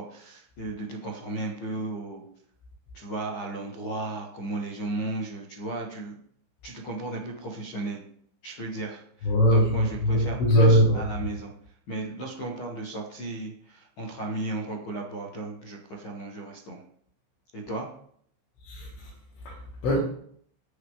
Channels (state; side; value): late; right; 15 ms